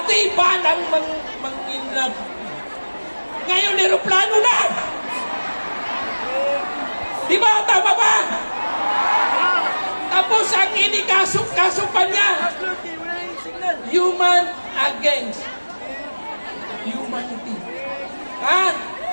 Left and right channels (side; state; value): both; inverted; correlation -1.00